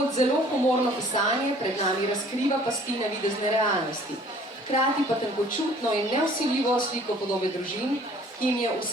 zelo humorno pisanje pred nami razkriva pasti navidezne realnosti, hkrati pa tenkočutno in nevsiljivo sliko podobe družin, ki jim je v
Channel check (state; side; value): normal; both; correlation 0.54